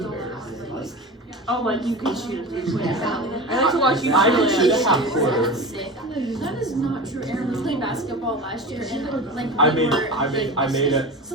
Oh, like you can shoot a 3-point. I like to watch you I shoot can shoot it. a half quarter. That is not true. Aaron was playing basketball last year, and like I we made were, I made it.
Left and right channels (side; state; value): both; normal; correlation 0.30